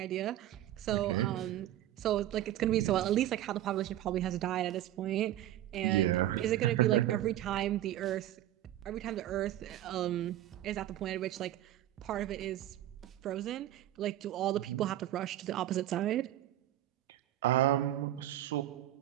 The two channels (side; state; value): left; quieter; 13.3 dB